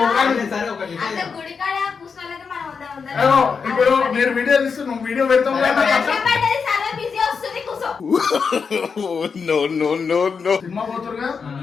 సరే, ఒకటి అంత గుడికాడ కూర్చున్నోళ్ళకి మనం వద్దా ఏమో, ఇప్పుడు మీరు వీడియో తీస్తే నువ్వు వీడియో పెడతావు కదా. చాలా బిజీ వస్తుంది కూర్చో. No no no no. Cinema పోతురుగా.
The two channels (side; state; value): right; quieter; 5.6 dB